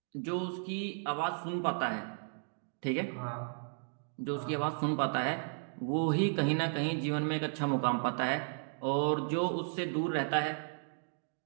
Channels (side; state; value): left; silent; digital silence